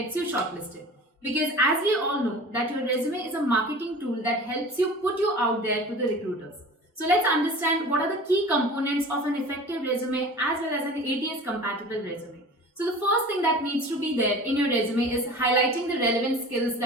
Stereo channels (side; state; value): both; normal; correlation 0.39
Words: you shortlisted. Because as we all know that your resume is a marketing tool that helps you put you out there to the recruiters. So let's understand what are the key components of an effective resume as well as an ATS compatible resume. So the first thing that needs to be there in your resume is highlighting the relevant skills